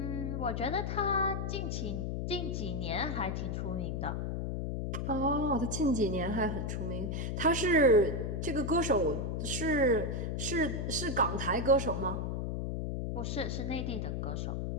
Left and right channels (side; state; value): left; noise; hum, 2 dB below the sound